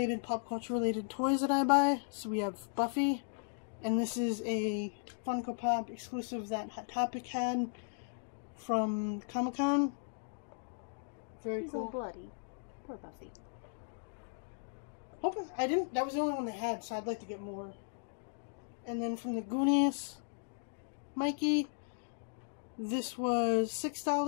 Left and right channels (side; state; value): right; silent; digital silence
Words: pop culture-related toys that I buy. So we have Buffy, and this is a Funko Pop exclusive that Hot Topic had from Comic-Con. Very He's cool. all bloody. Poor Buffy. That was the only one they had, so I'd like to get more. And then from the Goonies, Mikey, this was